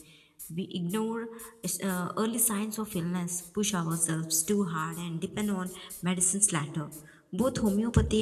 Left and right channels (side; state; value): both; identical; correlation 1.00